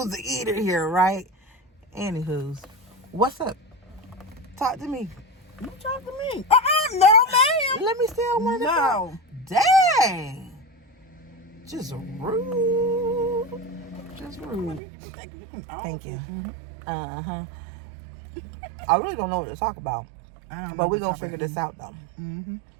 the eater here, right? Anywho's. What's up? Talk to me. You talk to me. No, ma'am. Let me steal one. No. Dang. Just rude. Just rude. Thank you. Uh-huh. I really don't know what to talk about. But we're going to figure this out, though. Mm-hmm.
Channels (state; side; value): drops out; left; at 14.8 s